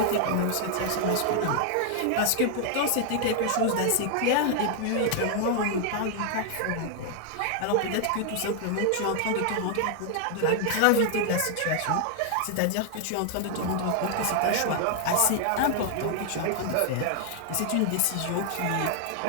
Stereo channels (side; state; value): both; different; correlation 0.00